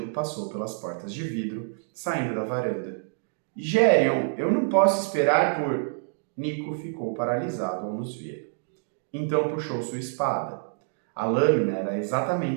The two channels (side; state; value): left; silent; digital silence